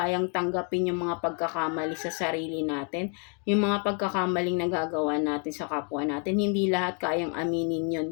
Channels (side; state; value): right; quieter; 39.5 dB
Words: tanggapin yung mga pagkakamali sa sarili natin, yung mga pagkakamaling nagagawa natin sa kapwa natin, hindi lahat kayang aminin yun